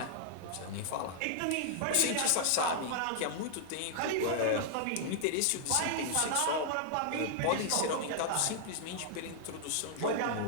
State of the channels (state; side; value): different; both; correlation -0.01